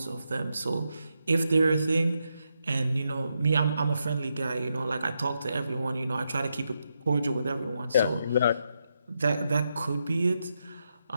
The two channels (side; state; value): both; inverted; correlation -0.83